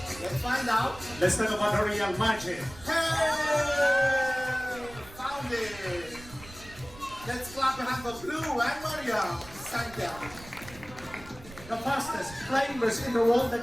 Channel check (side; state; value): right; noise; rumble, 18 dB below the sound